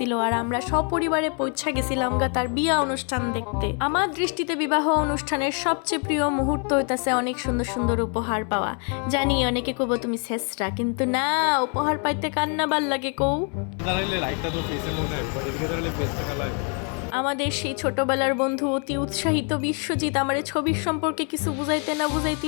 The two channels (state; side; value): quieter; right; 38.0 dB